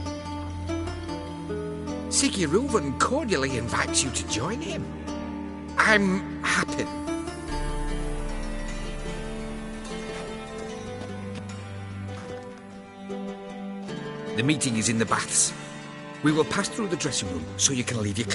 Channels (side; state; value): both; identical; correlation 1.00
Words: Siggy Reuven cordially invites you to join him. I'm happy. The meeting is in the baths. We will pass through the dressing room so you can leave your